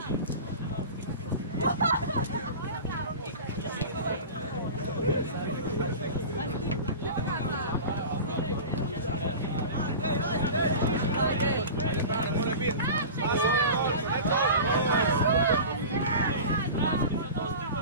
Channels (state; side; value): inverted; both; correlation -0.32